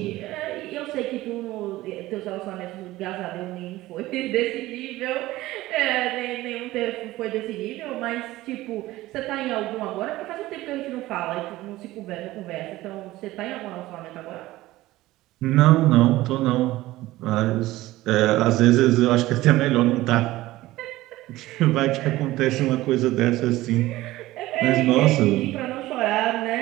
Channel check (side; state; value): left; quieter; 17.3 dB